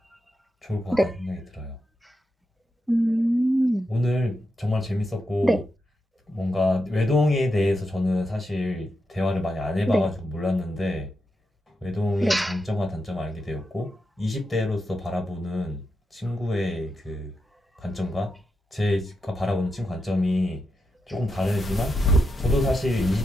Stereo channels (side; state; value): both; normal; correlation 0.86